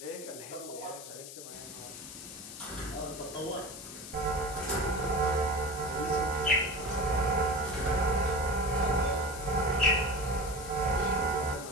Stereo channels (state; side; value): noise; left; hiss, 12 dB below the sound